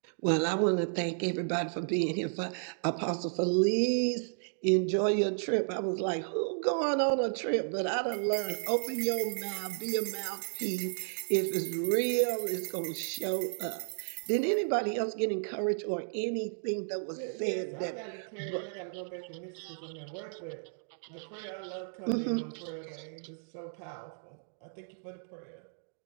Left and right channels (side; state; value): left; silent; digital silence